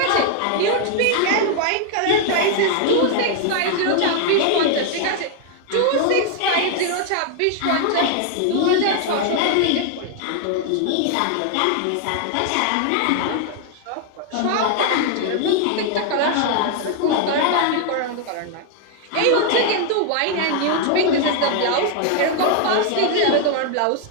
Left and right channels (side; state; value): both; different; correlation 0.00